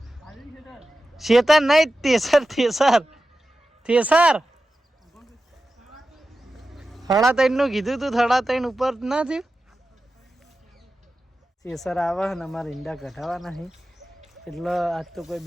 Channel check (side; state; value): both; normal; correlation 0.93